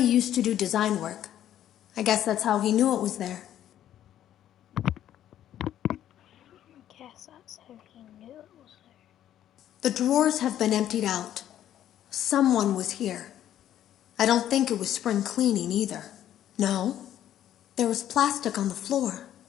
used to do design work. I guess that's how he knew it was there. I guess that's how he knew it was there. The drawers have been emptied out. Someone was here. I don't think it was spring cleaning either. No, there was plastic on the floor.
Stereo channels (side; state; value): right; quieter; 11.5 dB